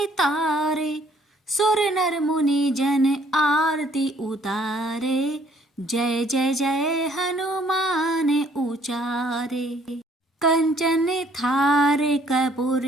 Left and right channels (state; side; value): normal; both; correlation 0.63